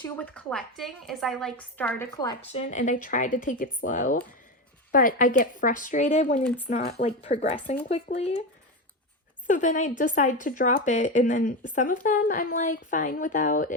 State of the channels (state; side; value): normal; both; correlation 0.17